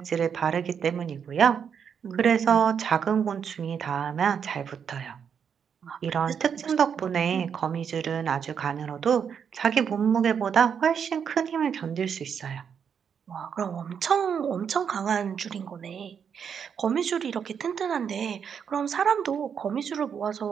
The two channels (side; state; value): left; quieter; 7.3 dB